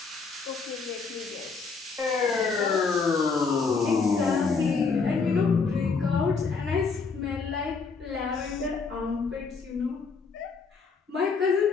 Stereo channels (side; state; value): right; quieter; 4.8 dB